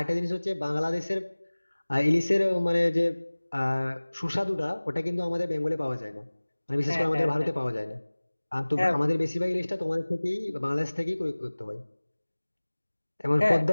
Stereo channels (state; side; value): inverted; both; correlation -1.00